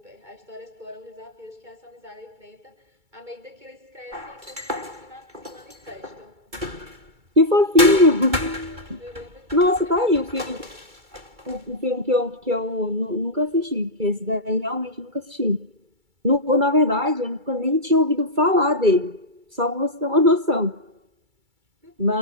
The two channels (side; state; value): left; late; 2.3 ms